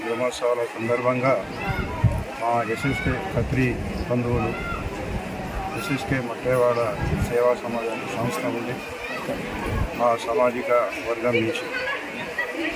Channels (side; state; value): both; identical; correlation 1.00